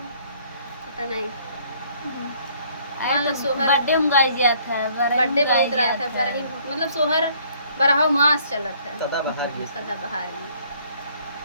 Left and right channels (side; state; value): both; inverted; correlation -0.61